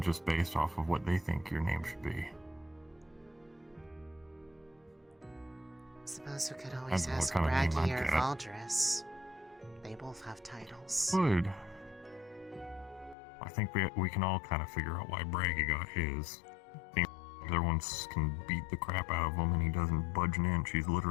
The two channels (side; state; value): right; drops out; at 13.2 s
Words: just based off of what they think your name should be. Suppose we could always ask Braggy or Valdris. They both have titles. Good. I think we can all kind of figure out why Braggy got his. The other ones can beat the crap out of him and he doesn't budge an inch. He's